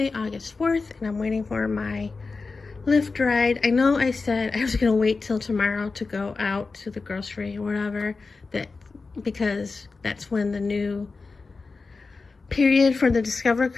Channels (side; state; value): right; quieter; 4.1 dB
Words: August 4th, and I'm waiting for my Lyft ride. I know I said I was going to wait till tomorrow to go out to the grocery or whatever, because that's when the new period for the Discover